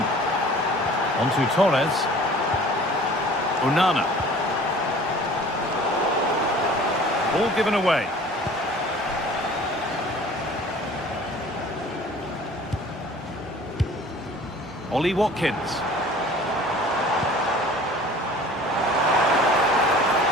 On to Torres. Onana. Ball given away. Ollie Watkins.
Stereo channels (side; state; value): both; normal; correlation 0.47